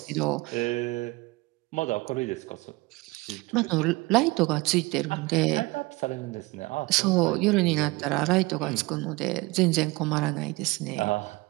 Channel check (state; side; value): quieter; left; 22.9 dB